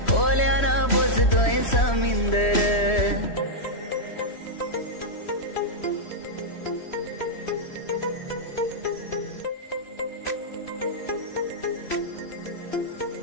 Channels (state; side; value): late; right; 3.1 ms